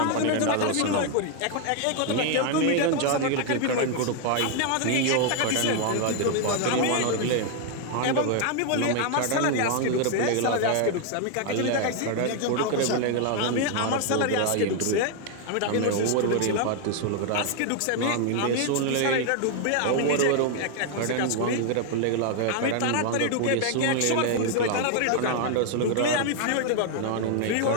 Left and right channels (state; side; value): different; both; correlation 0.00